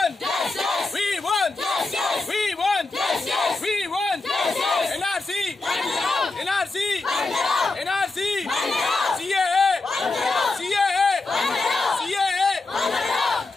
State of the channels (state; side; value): quieter; right; 3.5 dB